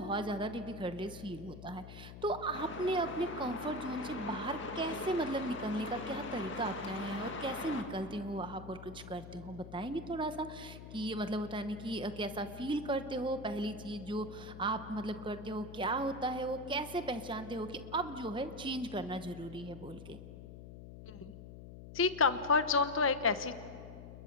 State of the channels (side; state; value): left; noise; hum, 13 dB below the sound